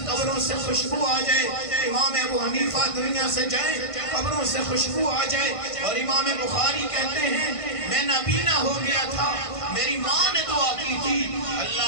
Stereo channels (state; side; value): late; right; 1.5 ms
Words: قبروں سے خوشبو آ جائے، امام ابو حنیفہ دنیا سے جائے قبروں سے خوشبو آ جائے، اور امام بخاری کہتے ہیں میں نابینا ہو گیا تھا، میری ماں نے دعا کی تھی